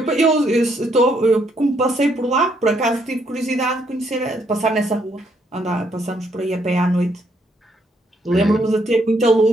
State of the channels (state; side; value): normal; both; correlation 0.72